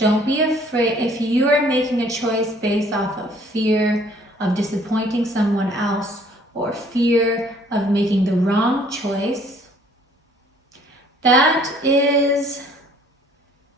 be afraid. If you are making a choice based off of fear of disappointing someone else, or fear of making the wrong choice, that is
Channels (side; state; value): both; normal; correlation 0.58